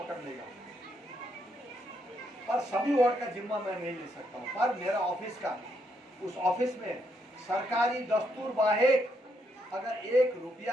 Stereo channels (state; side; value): normal; both; correlation 0.77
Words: लेगा। पर सभी वार्ड का जिम्मा मैं नहीं ले सकता हूँ, पर मेरा ऑफिस का, उस ऑफिस में सरकारी दस्तूर बाहेक अगर 1